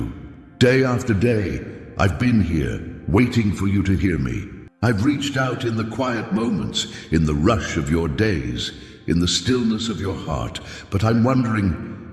Day after day, I've been here, waiting for you to hear me. I've reached out in the quiet moments, in the rush of your days, in the stillness of your heart. But I'm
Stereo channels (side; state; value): both; identical; correlation 1.00